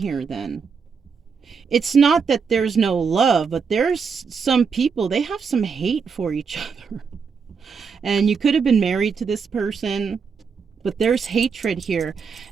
then. It's not that there's no love, but there's some people, they have some hate for each other. And you could have been married to this person, but there's hatred here.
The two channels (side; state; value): left; quieter; 5.7 dB